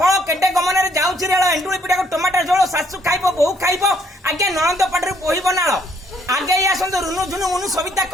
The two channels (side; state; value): both; normal; correlation 0.67